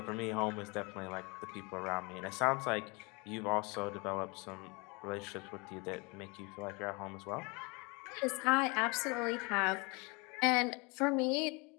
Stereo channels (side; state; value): right; quieter; 28.6 dB